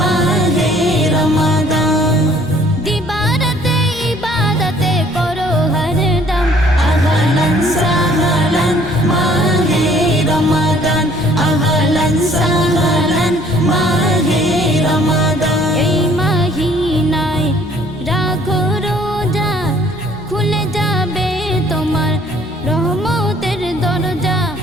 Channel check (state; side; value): normal; both; correlation 0.58